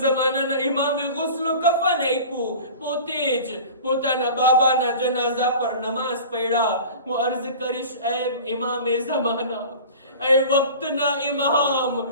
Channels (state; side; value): inverted; both; correlation -0.39